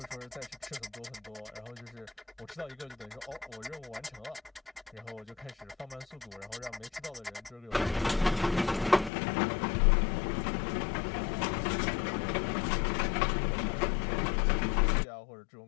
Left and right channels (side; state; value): right; drops out; at 9.1 s